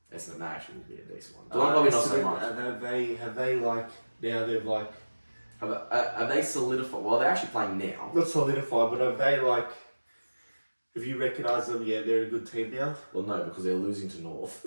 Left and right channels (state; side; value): inverted; both; correlation -1.00